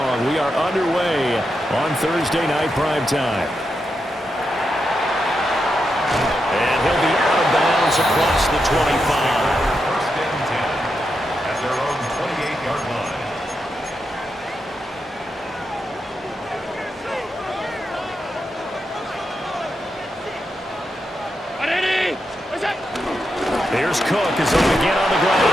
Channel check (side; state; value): both; normal; correlation 0.85